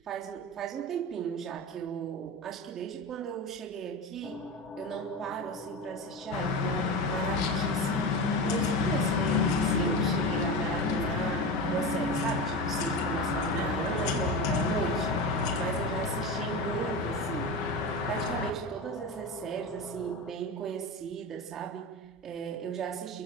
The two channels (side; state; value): both; normal; correlation 0.24